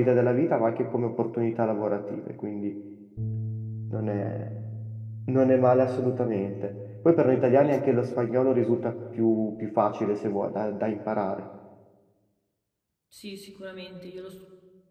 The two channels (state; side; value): identical; both; correlation 1.00